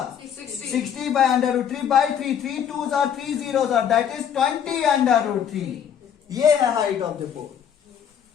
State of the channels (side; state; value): right; quieter; 8.7 dB